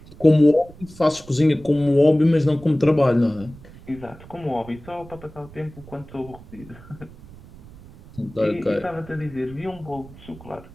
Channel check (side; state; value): right; noise; rumble, 20 dB below the sound